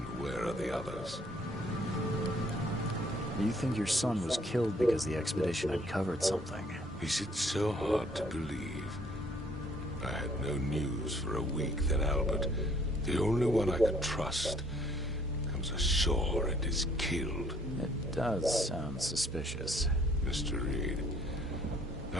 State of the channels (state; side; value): normal; both; correlation 0.63